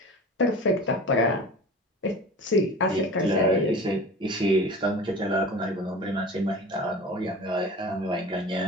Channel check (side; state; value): both; normal; correlation 0.37